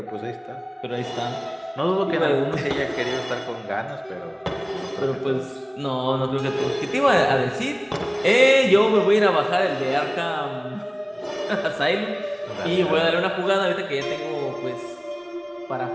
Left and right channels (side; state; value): both; identical; correlation 1.00